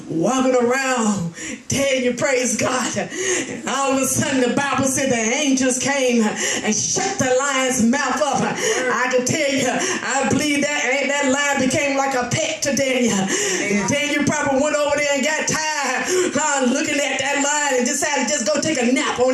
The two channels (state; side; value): identical; both; correlation 1.00